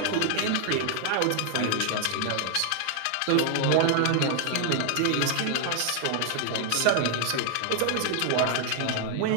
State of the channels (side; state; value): both; different; correlation 0.00